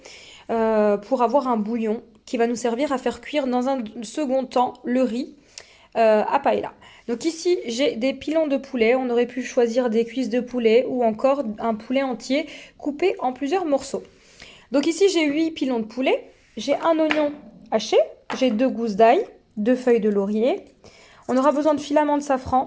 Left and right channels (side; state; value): both; identical; correlation 1.00